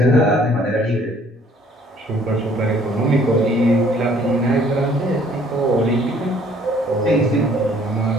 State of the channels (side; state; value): both; normal; correlation 0.59